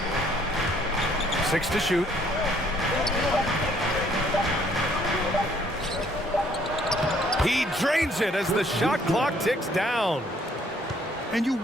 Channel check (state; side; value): normal; both; correlation 0.64